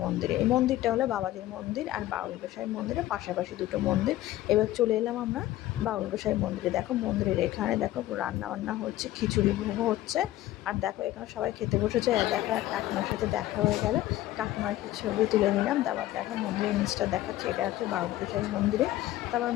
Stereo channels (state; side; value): quieter; right; 15.1 dB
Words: মন্দিরে। এই মন্দিরটা হলো বাবাজির মন্দির আর বাউল গোসাই মন্দিরের পাশাপাশি দুটো মন্দির। এবার চলে এলাম আমরা বাউল গোসাই মন্দিরে। দেখো মন্দিরের এখানে দেখো রান্না বান্না হচ্ছে, খিচুড়ি ভোগ হচ্ছে। আর দেখো এখানে সবাই খেতে বসেছে। দেখো কাকিমার সাথে দেখা হয়ে গেল, কাকিমার কিছু ছবি তুলে নিলাম। তারপর দেখো মন্দিরের নিচটা দেখাচ্ছে, এটা হচ্ছে বাউল গোসাই মন্দিরে। তারপর